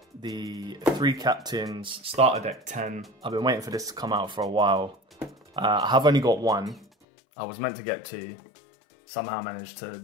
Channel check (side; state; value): right; drops out; at 6.9 s